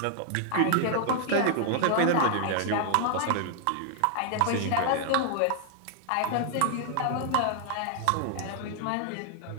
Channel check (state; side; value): different; both; correlation 0.00